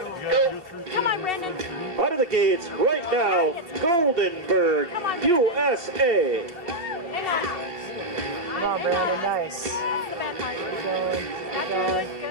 go. Come on, Brandon. Out of the gates right now, Goldenberg, USA. Hang on. Come on, Brandon, nice. That's the bad part. Keep going, keep going.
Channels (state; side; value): late; left; 2.8 ms